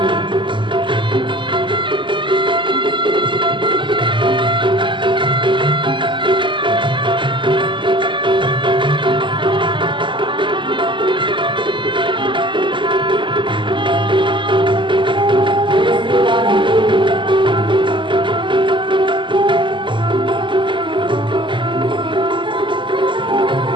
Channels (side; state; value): left; late; 0.24 ms